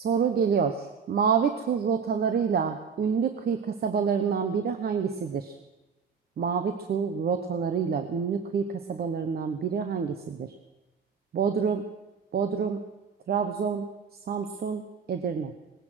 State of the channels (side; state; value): left; quieter; 6.2 dB